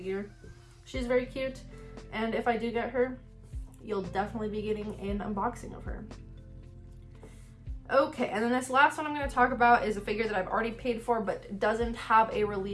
She's very cute, and if I do get her, you'll definitely be getting an unboxing of her. Okay, and then this last one I'm going to talk about is a figure that I've already paid for but doesn't have a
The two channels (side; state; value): both; identical; correlation 1.00